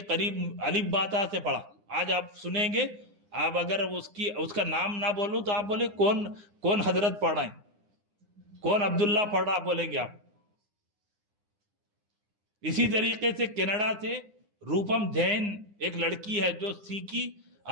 قریب الف با تا سے پڑھا۔ آج آپ سنیں گے، آپ اگر اس کا نام نہ بولوں تو آپ بولے کون حضرت پڑھ رہے ہیں، کون عبداللہ پڑھ رہا بولیں گے آپ۔ اسی طریقے سے کینیڈا سے روپم جین ایک لڑکی ہے جو سیکھی،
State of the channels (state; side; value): late; left; 9.8 ms